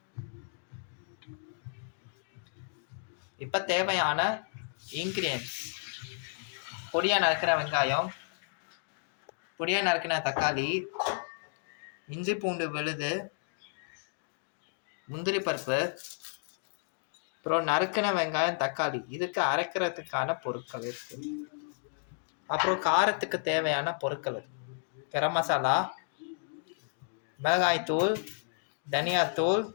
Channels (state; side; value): silent; right; digital silence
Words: இப்போ தேவையான இன்கிரியன்ஸ்: பொடியா நறுக்கிற வெங்காயம், பொடியா நறுக்கின தக்காளி, இஞ்சி பூண்டு விழுது, முந்திரி பருப்பு, அப்புறம் நறுக்கின வெங்காயம் தக்காளி. இதுக்கு அரைக்கிறதுக்கான பொருட்கள் இருக்கு. அப்புறம் காரத்துக்கு தேவையான பொருட்கள்: கரம் மசாலா, மிளகாய்த்தூள், தனியாத்தூள்,